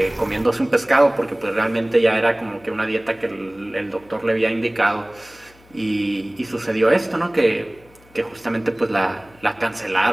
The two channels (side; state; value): left; noise; hum, 28 dB below the sound